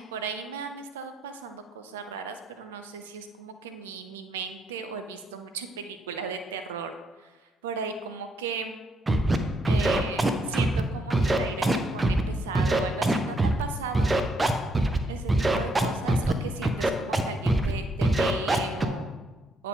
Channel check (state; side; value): normal; both; correlation 0.74